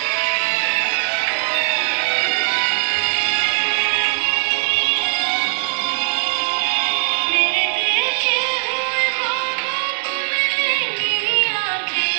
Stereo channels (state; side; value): silent; left; digital silence